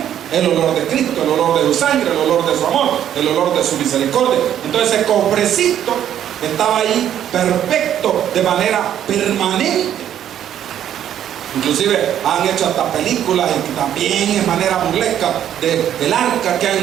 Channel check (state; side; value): quieter; left; 10.5 dB